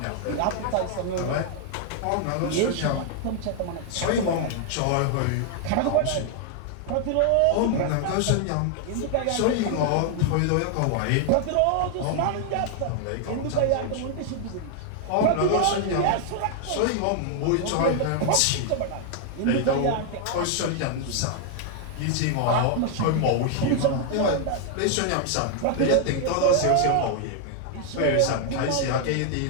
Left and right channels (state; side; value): different; both; correlation 0.00